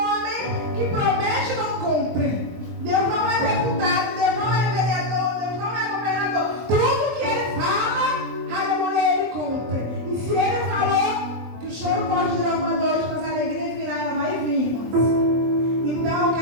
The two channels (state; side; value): late; left; 24 ms